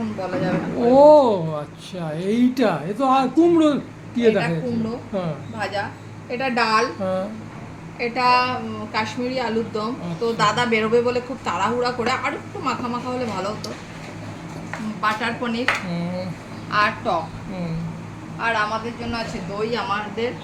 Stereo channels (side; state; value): both; identical; correlation 1.00